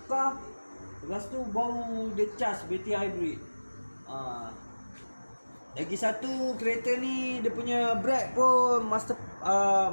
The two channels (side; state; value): both; inverted; correlation -1.00